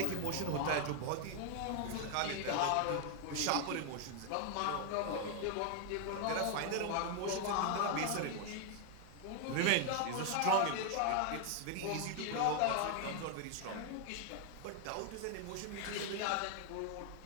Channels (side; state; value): both; different; correlation 0.00